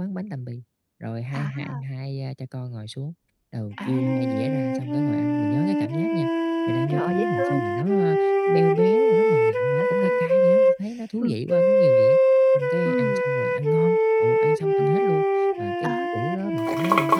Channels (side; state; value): both; identical; correlation 1.00